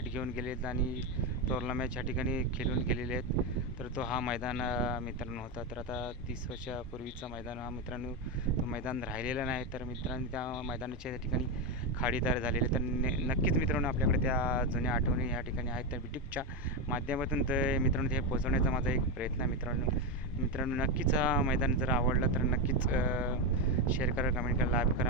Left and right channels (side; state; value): both; normal; correlation 0.10